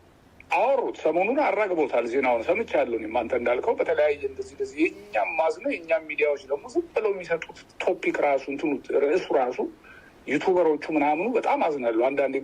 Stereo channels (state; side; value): identical; both; correlation 1.00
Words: አወሩት ሰሞኑን አራግቦታል ዜናውን ሰምቻለሁ አንተ እንዳልከው በተለያየ እንደዚህ የኛም ማዝነው የኛም ሚዲያዎች ደግሞ ዝም ብለው የሚሰጡት ቶፒክ ራሱ እንትኑ ርዕሱ ራሱ ዩቲዩበሮቹ ምናምኑ በጣም አዝናለሁ አንዳንዴ